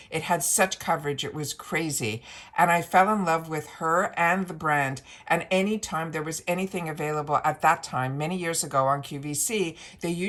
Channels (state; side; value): identical; both; correlation 1.00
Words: It had such coverage, it was crazy. And I fell in love with her and the brand. And anytime there was anything available at that time, many years ago on QVC, they